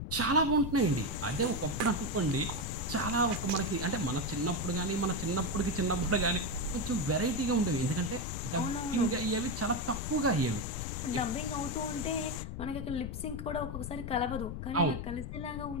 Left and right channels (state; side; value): noise; left; rumble, 6 dB below the sound